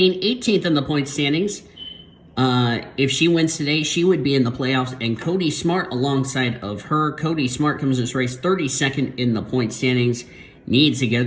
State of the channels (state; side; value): identical; both; correlation 1.00